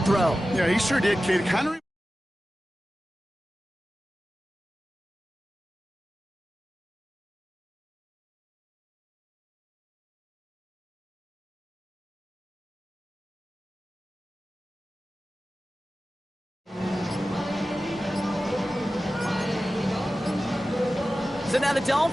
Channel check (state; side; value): normal; both; correlation 0.95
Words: throw. Yeah, he sure did, Kate. Kind of. So now the